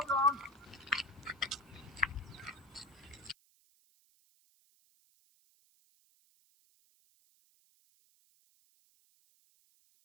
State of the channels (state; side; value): noise; right; hiss, 30 dB below the sound